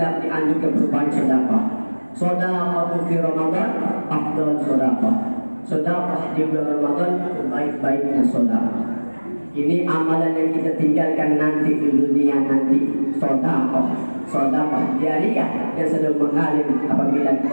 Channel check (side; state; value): both; inverted; correlation -1.00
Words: dianjurkan berbanyak sedekah. Sedekah di Ramadan afdal sedekah. Sedekah di bulan Ramadan sebaik-baiknya sedekah. Ini amalan yang kita tinggalkan nanti di dunia nanti. Sedekah jariah yang sedang mengalir apabila kita